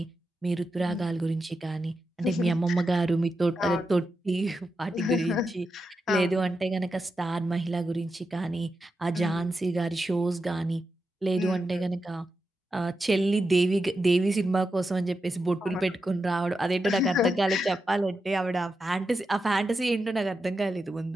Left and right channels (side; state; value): both; normal; correlation 0.88